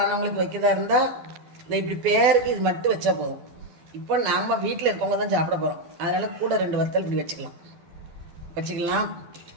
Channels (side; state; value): left; late; 12 ms